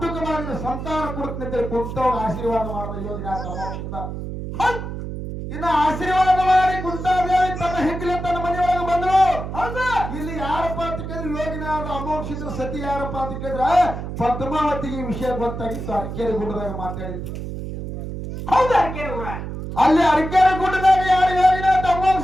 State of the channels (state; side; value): noise; right; hum, 7 dB below the sound